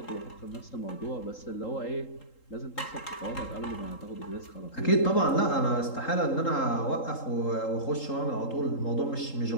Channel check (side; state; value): right; late; 3.8 ms